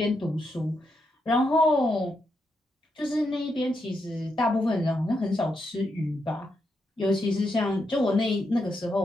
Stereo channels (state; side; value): normal; both; correlation 0.83